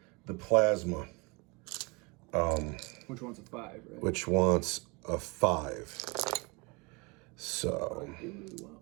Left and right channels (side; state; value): left; quieter; 28.6 dB